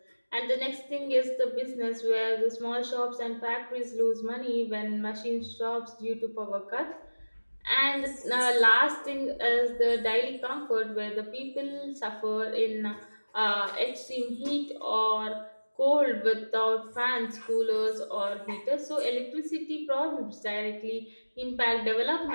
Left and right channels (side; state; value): both; inverted; correlation -1.00